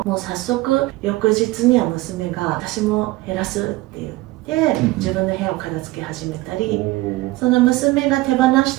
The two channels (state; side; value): quieter; left; 19.1 dB